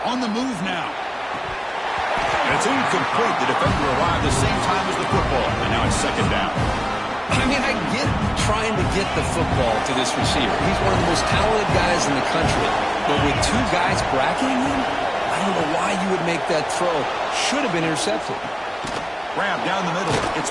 On the move now. And it's incomplete. The defender arrived the same time as the football, and now it's 2nd down. I mean, I get trying to get the football to this receiver. He's one of the most talented guys in the country. But with 2 guys bracketing him, I don't know why you would make that throw. Should have been intercepted. Grab down the middle. It's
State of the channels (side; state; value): both; identical; correlation 1.00